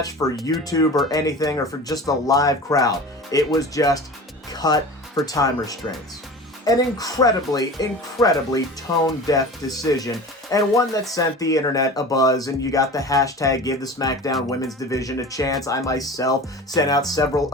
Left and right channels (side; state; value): both; normal; correlation 0.35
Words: for YouTube or anything, or for just a live crowd. It was just cut for time restraints. An incredibly tone-deaf decision, and one that sent the internet abuzz, and you got the hashtag Give the SmackDown Women's Division a Chance. I myself sent out several